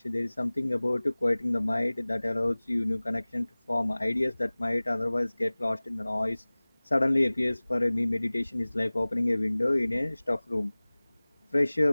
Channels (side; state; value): both; inverted; correlation -1.00